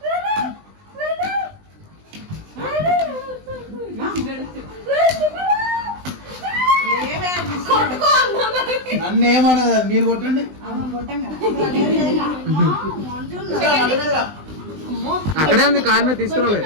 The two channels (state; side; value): late; left; 20 ms